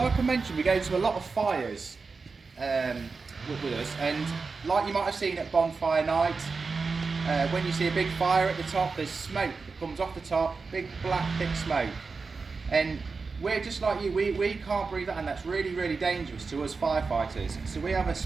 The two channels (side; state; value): left; quieter; 4.5 dB